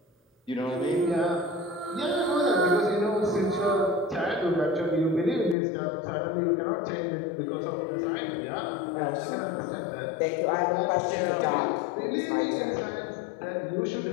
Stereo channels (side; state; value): right; drops out; at 5.6 s